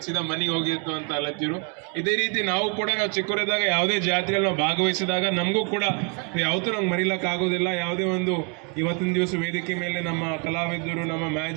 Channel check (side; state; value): left; quieter; 35.0 dB